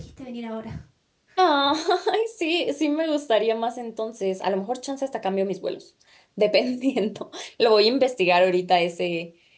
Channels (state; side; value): identical; both; correlation 1.00